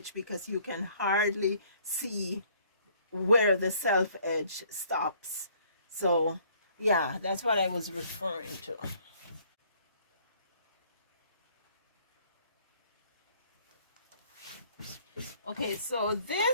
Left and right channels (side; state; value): both; inverted; correlation -0.61